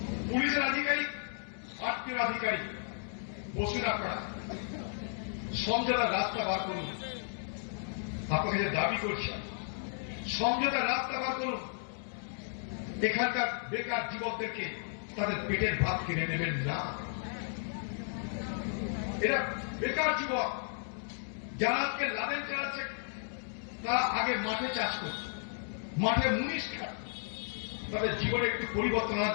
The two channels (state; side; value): silent; right; digital silence